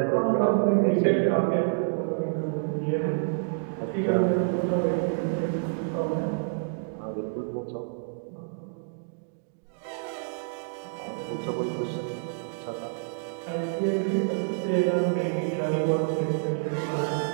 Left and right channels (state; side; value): silent; left; digital silence